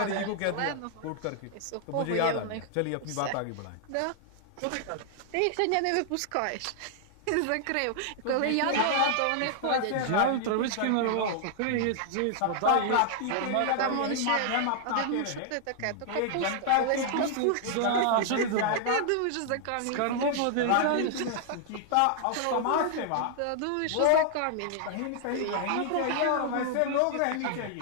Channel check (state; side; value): different; both; correlation 0.00